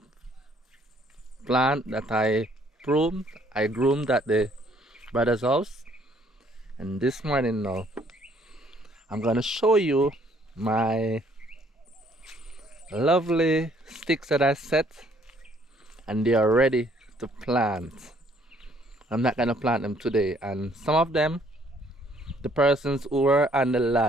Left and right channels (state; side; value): normal; both; correlation 0.63